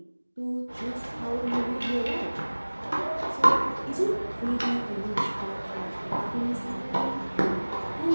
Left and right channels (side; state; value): both; inverted; correlation -1.00